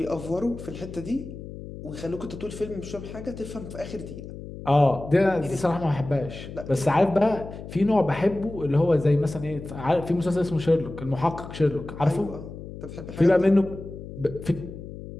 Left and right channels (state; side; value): noise; left; hum, 12 dB below the sound